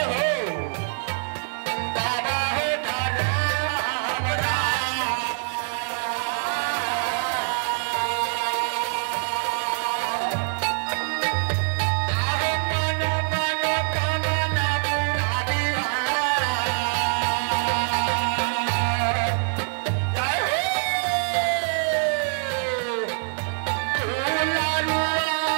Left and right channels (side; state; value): left; silent; digital silence